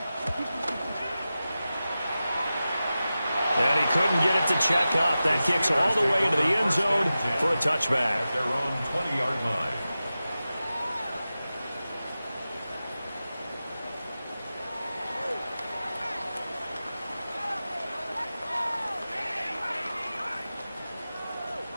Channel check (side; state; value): both; inverted; correlation -0.94